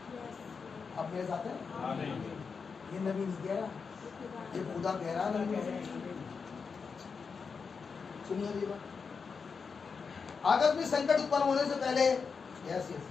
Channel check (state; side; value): quieter; right; 5.4 dB